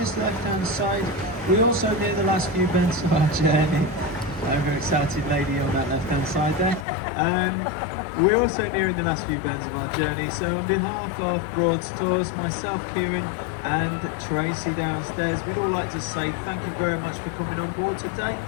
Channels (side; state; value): right; drops out; at 6.9 s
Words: left-hand side, we also near the last few bends of our journey. Overexcited lady on that left-hand side there. We're also nearing the last few bends of our journey, so on behalf of Broads Tours, myself, Kieran, and Tracy downstairs, we'd all like to say thank you very much for coming on board today.